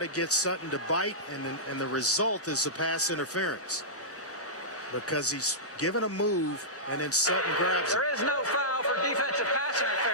get Sutton to bite, and the result is the pass interference. Because he's given a move, and then Sutton grabs it. There is no foul for defensive pass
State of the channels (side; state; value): both; normal; correlation -0.15